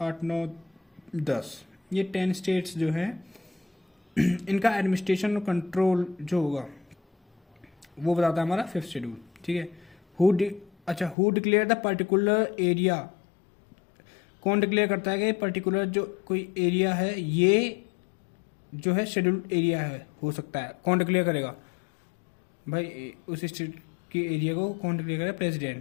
9, 10, ये 10 स्टेट्स जो है इनका एडमिनिस्ट्रेशन और कंट्रोल जो होगा वो बताता है हमारा फिफ्थ शेड्यूल। ठीक है, who declare the particular area. कौन डिक्लेयर करता है कि पर्टिकुलर जो कोई एरिया है ये जो है शेड्यूल्ड एरिया है, हो सकता है। कौन डिक्लेयर करेगा भाई? उस स्टेट के एरिया को कौन डिक्लेयर करेगा?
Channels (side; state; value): right; drops out; at 11.2 s